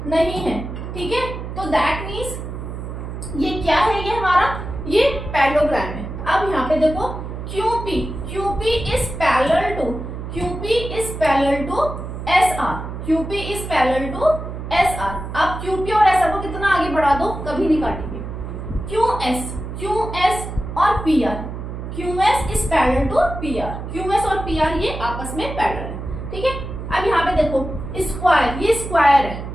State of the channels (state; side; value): noise; right; hum, 8 dB below the sound